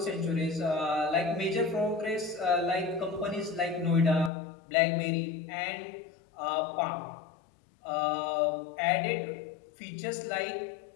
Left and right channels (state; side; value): drops out; right; at 4.3 s